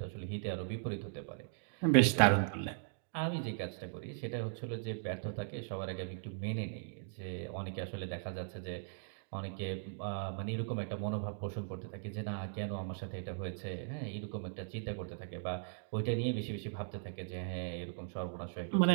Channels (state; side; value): silent; left; digital silence